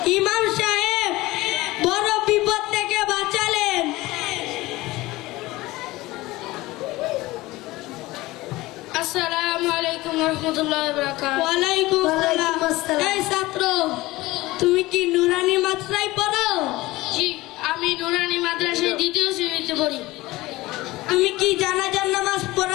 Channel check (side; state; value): right; quieter; 19.3 dB